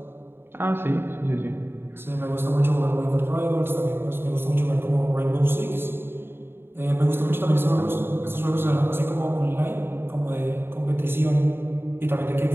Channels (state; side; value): late; left; 0.11 ms